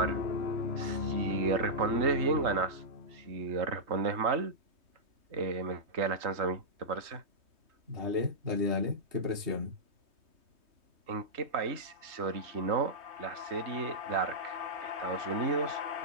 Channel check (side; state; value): left; late; 3.2 ms